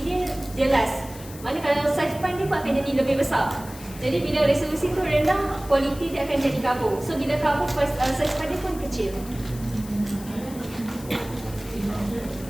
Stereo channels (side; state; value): left; noise; hiss, 17 dB below the sound